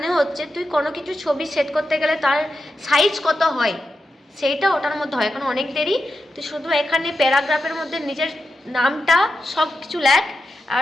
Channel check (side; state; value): both; normal; correlation 0.89